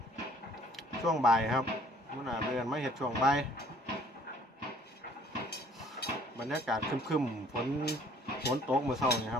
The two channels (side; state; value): both; normal; correlation 0.57